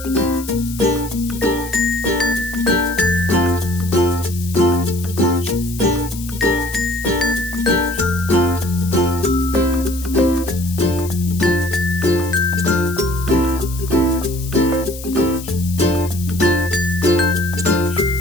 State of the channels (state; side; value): noise; left; hiss, 14 dB below the sound